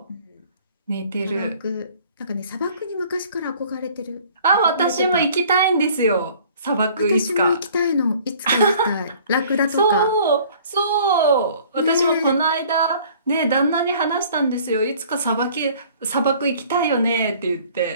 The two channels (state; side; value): inverted; both; correlation -0.53